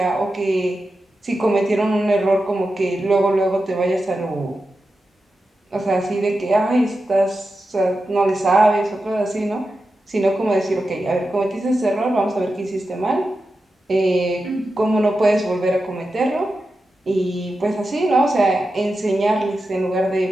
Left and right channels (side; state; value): both; normal; correlation 0.91